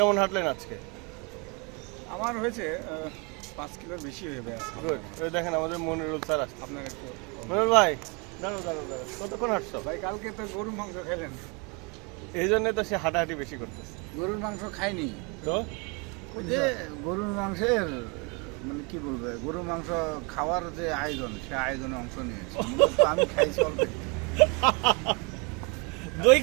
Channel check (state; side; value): quieter; left; 30.5 dB